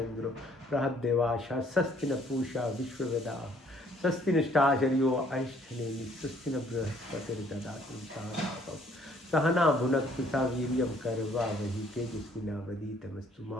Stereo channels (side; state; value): both; normal; correlation 0.62